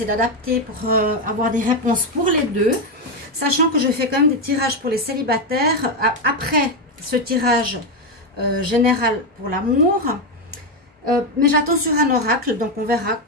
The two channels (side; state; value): both; normal; correlation 0.08